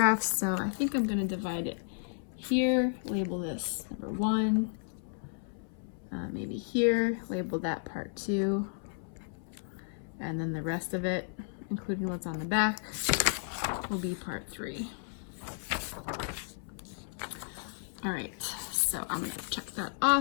so I think I'm going to divide it here, label this number 1. Maybe here, label that part 2, and then the rest of it, including what's on the back, will be part 3. All right, so I'm gonna check that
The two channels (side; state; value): right; silent; 56 dB below the other